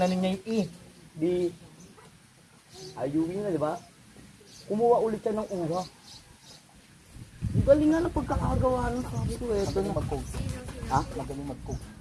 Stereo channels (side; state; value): both; identical; correlation 1.00